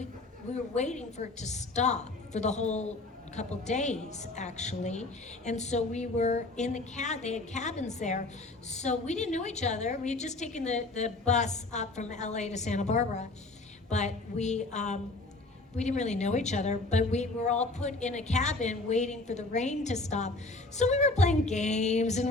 were waiting for it to stop for the whole couple days, actually. And so we were in the they had cabins there. So we didn't know each other. We had just taken the bus up from LA to Santa Barbara, but we didn't really know each other, but we were all put in a cabin waiting for the rain to stop. So we were playing games and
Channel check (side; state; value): right; quieter; 3.1 dB